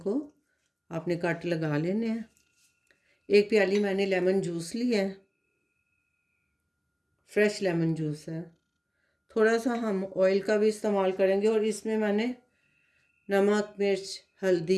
आपने कट लगा लेने हैं। एक प्याली मैंने लेमन जूस लिया है, फ्रेश लेमन जूस है। थोड़ा सा हम ऑयल का भी इस्तेमाल करेंगे और इसमें मैंने नमक, मिर्च,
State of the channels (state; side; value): identical; both; correlation 1.00